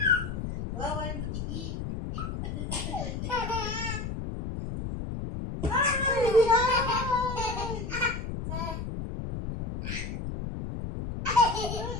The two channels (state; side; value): noise; left; rumble, 5 dB below the sound